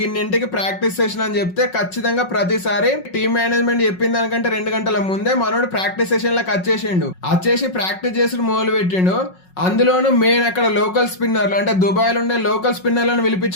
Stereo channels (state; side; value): late; right; 5.4 ms